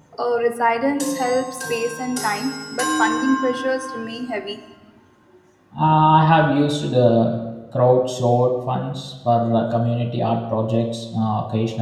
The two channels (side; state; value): both; identical; correlation 1.00